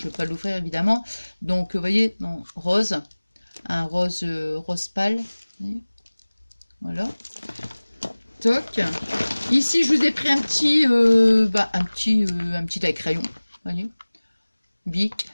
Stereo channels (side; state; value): both; inverted; correlation -1.00